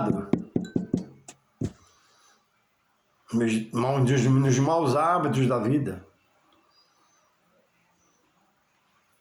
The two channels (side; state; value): both; identical; correlation 1.00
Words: nos maus hábitos da vida.